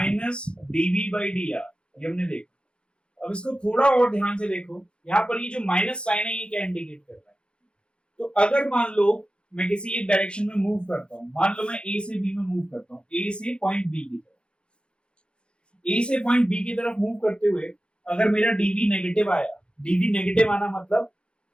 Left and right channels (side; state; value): right; late; 0.055 ms